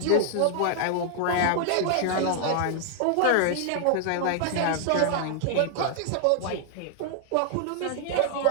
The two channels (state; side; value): different; both; correlation -0.01